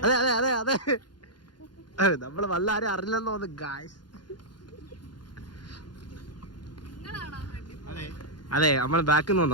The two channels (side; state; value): right; late; 0.71 ms